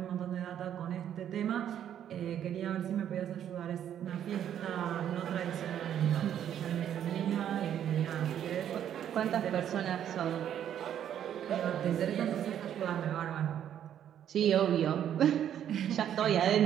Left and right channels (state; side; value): quieter; left; 10.0 dB